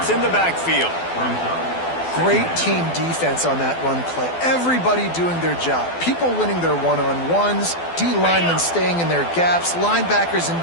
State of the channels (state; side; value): late; right; 12 ms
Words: in the backfield. Great team defense on that run play. Everybody doing their job. People winning their one-on-ones, D linemen staying in their gaps, linebackers and